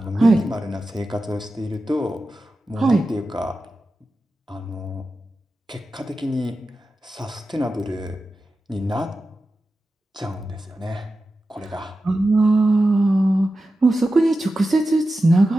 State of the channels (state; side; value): normal; both; correlation 0.92